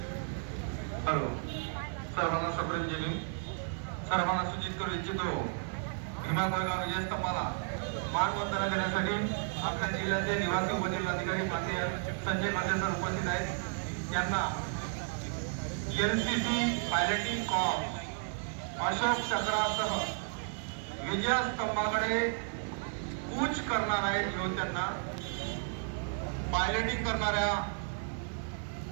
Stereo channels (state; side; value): silent; left; 56 dB below the other